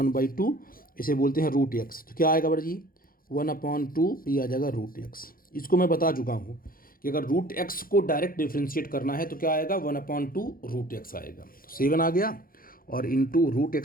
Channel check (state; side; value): late; right; 0.42 ms